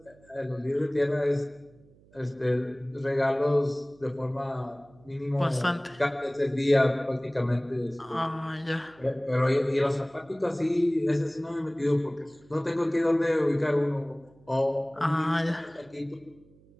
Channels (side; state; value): right; noise; hum, 28 dB below the sound